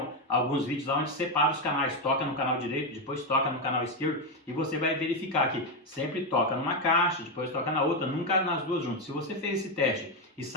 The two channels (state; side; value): normal; both; correlation 0.07